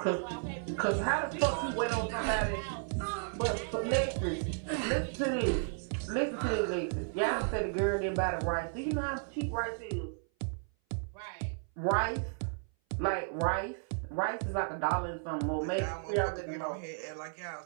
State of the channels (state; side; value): silent; left; 55 dB below the other